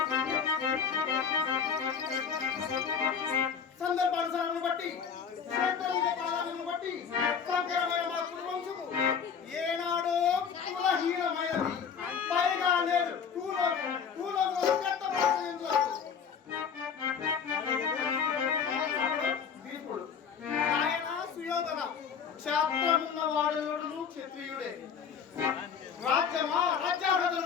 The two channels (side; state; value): right; quieter; 6.8 dB